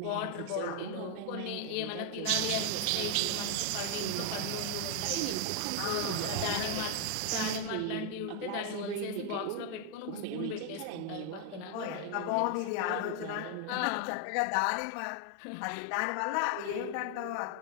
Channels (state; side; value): different; both; correlation 0.00